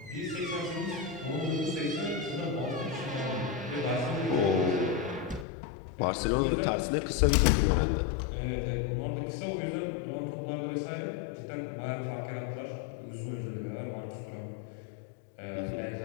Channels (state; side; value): drops out; right; at 5.5 s